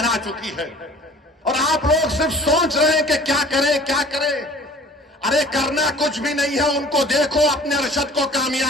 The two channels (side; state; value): both; normal; correlation 0.48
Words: चुकी है और आप लोग सिर्फ सोच रहे हैं कि क्या करें क्या करें। अरे करना कुछ भी नहीं है, उनको देखो, अपने अरशद को